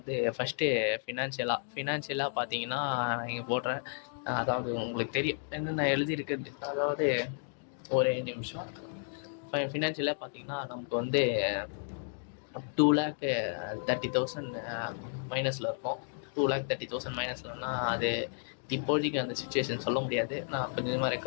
ஃபஸ்ட்டு ஃபினான்ஷியலாக பார்த்தீங்கன்னா இங்கே போடுறேன். அதாவது உங்களுக்கு தெரியும் என்னென்ன எழுதியிருக்குது. அதாவது ஒரு நிமிஷம். ஃபினான்ஷியலாக பார்த்தீங்கன்னா நமக்கு வந்து 2,30,000 மைனஸில் இருக்கும். 2,30,000 மைனஸ்லன்னா அது இப்போதைக்கு அந்த சுச்சுவேஷன் சொல்ல முடியாது. நான் கொஞ்சம் கொஞ்சமாக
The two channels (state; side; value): silent; right; digital silence